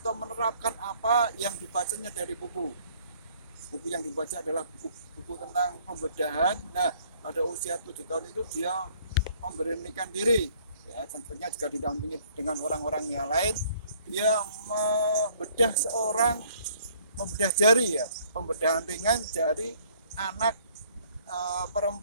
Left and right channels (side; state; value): both; inverted; correlation -0.61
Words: menerapkan apa yang dibacanya dari buku. Buku yang dibaca adalah buku tentang pembedahan. Nah, pada usia 7 tahun itu dia memberanikan diri ya, tentunya juga didampingi dengan orang-orang yang lain. Dia membedah jari ya, pembedahan ringan jari anak